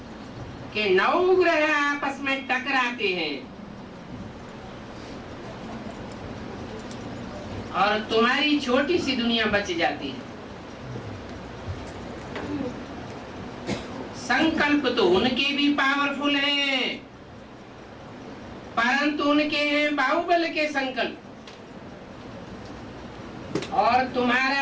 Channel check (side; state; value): both; identical; correlation 1.00